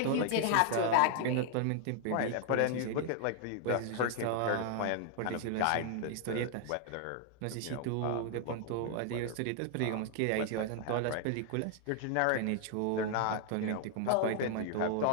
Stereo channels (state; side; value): different; both; correlation 0.00